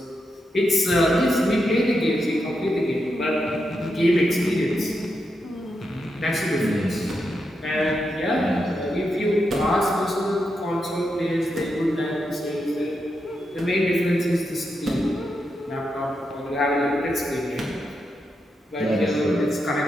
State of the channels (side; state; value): both; normal; correlation 0.85